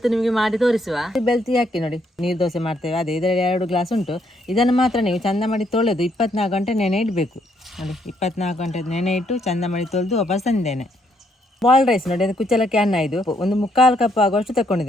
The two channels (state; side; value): normal; both; correlation 0.72